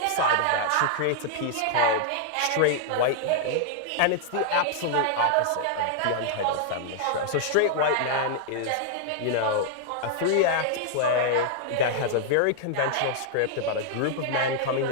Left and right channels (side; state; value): both; different; correlation -0.01